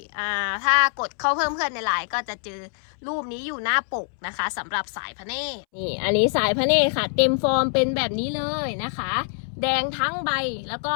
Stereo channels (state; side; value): silent; right; 62 dB below the other